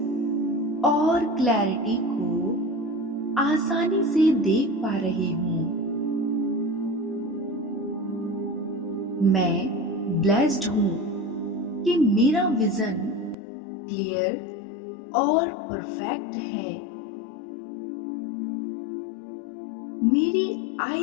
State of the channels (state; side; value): drops out; right; at 13.4 s